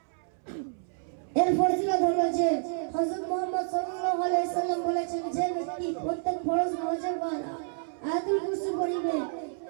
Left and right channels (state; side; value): silent; left; 58 dB below the other